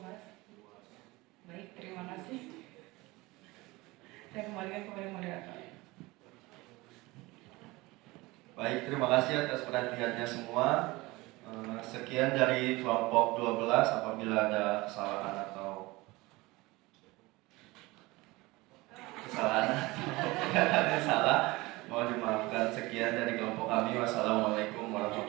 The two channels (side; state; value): left; quieter; 21.7 dB